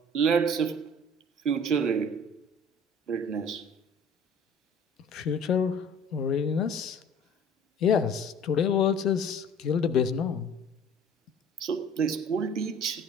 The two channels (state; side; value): normal; both; correlation 0.48